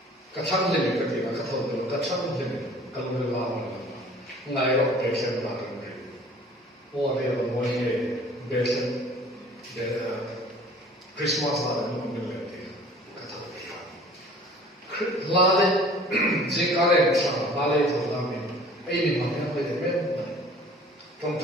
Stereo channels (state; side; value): normal; both; correlation 0.49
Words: Katang limit ka tina katol limit. Katang limit kalung lamang. Ngai ro patient lang rin. O ari ang mo ni patient Christmas lang mo nilet. Katol limit. Lale jikare sa lale to lang. Ay ni mga pwede men. Tong